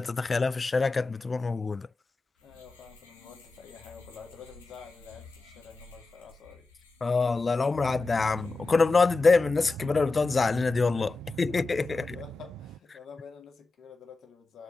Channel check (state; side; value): quieter; right; 3.7 dB